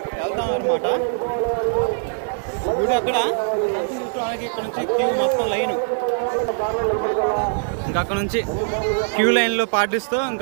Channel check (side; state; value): left; silent; digital silence